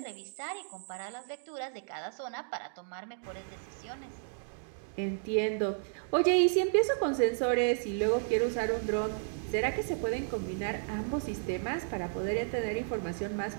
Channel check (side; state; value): left; silent; digital silence